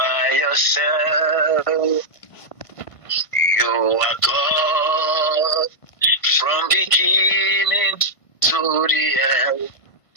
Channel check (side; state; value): right; late; 1.5 ms